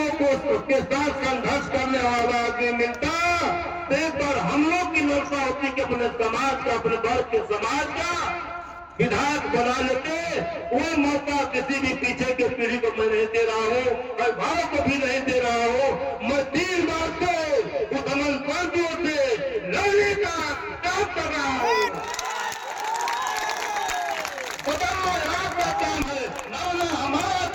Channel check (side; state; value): both; identical; correlation 1.00